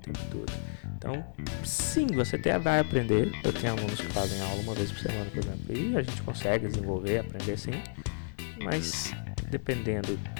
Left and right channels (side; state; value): right; silent; digital silence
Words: todo. Então, sim, você até vai aprender. Eu tenho alunos que fazem aula uma vez por semana, por exemplo, e a gente consegue desenvolver, aprender sim. Mas, dependendo